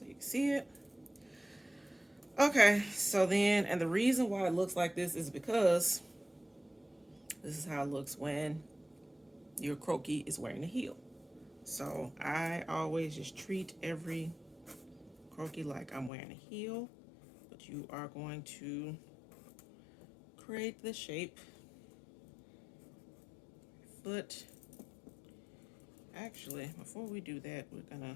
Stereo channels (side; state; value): right; drops out; at 16.1 s